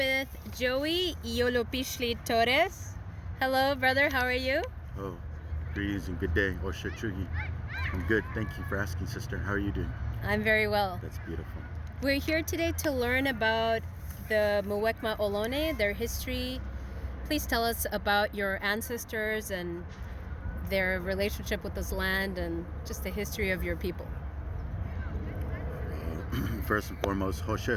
Joey Iolopishli Torres. Hello, brother, how are you? Oh, greetings and good day. Osha Chugi. I'm good. Thank you for asking, sister. How are you doing? I'm very well. That's beautiful. We're here today to learn about the Muwekma Ohlone, their history. Please tell us about your ancestors and their relationship with this land and just the history of your people. First and foremost,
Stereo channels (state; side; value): identical; both; correlation 1.00